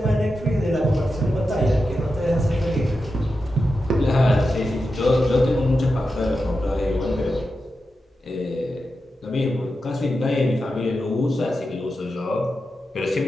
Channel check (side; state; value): both; normal; correlation 0.90